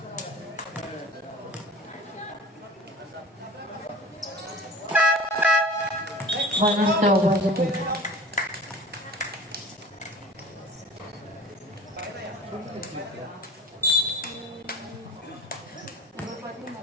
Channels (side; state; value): both; normal; correlation 0.41